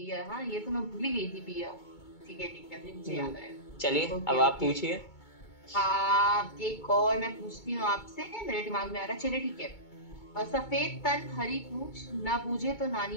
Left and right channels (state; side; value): late; right; 2.2 ms